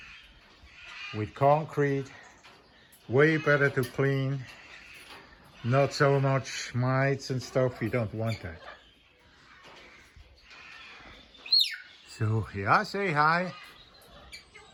with concrete, way better to clean, not so much mites and stuff, we don't want that. So yeah, say hi.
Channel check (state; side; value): identical; both; correlation 1.00